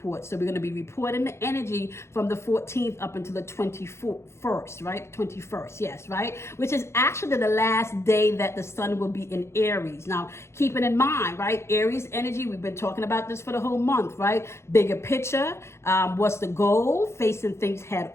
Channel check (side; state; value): right; late; 0.13 ms